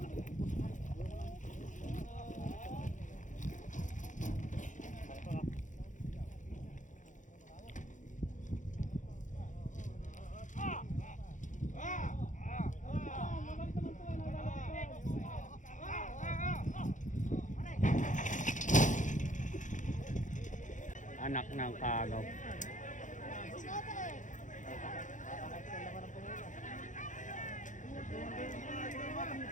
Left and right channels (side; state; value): right; late; 0.37 ms